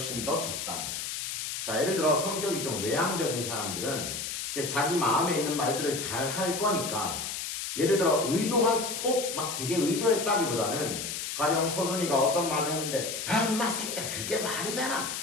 더 적다는 거지. 자, 예를 들어 성격이 좀 외향적인 사람들은 이렇게 자기 마음에 있는 말들을 잘 할 거니까, 예를 들어 의도한 꼭 막 되게 의도했다기보다는 가령 서준이가 어떤 말을 했는데 인마 새끼야 그게 말이 되나?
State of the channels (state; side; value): noise; left; hiss, 4 dB below the sound